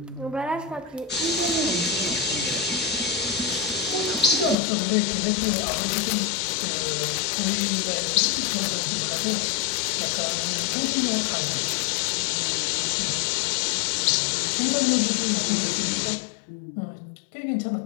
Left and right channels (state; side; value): drops out; right; at 4.5 s